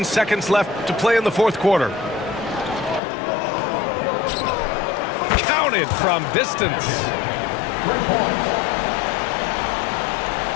seconds left to play in the fourth quarter. Counted from distance.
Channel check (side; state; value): right; drops out; at 3.0 s